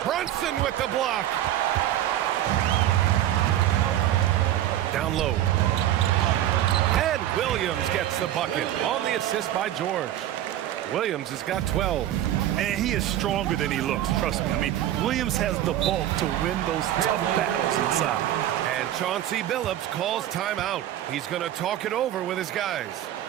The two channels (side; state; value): left; quieter; 12.5 dB